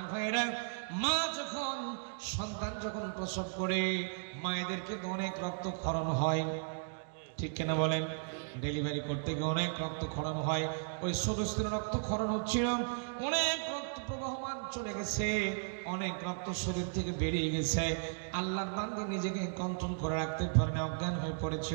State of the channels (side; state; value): left; silent; digital silence